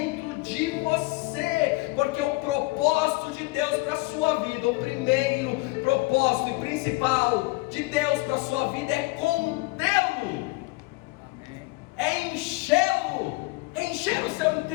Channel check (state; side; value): quieter; right; 23.0 dB